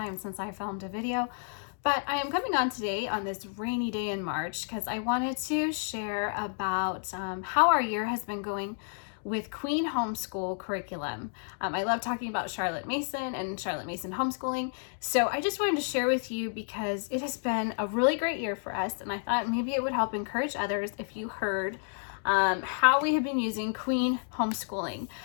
since I filmed a video, but I am coming on today on this rainy day in March because I wanted to share about how our year has been going with Queen Homeschool curriculum. I love talking about Charlotte Mason and Charlotte Mason homeschooling, so I just wanted to share with you because it has been a really great year for us, and I thought maybe it would help encourage others if you heard how we have been using Queen homeschooling.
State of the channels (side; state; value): right; silent; 57 dB below the other